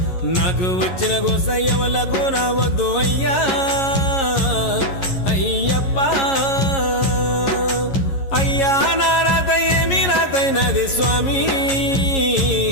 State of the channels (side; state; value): right; late; 11 ms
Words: నాకు వచ్చిన గోసయ్యవలకు రావద్దు అయ్యా అయ్యప్ప అయ్యా నా రాత ఏమి రాతైనది స్వామి